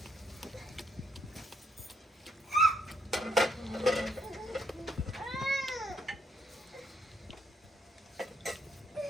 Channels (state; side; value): normal; both; correlation 0.73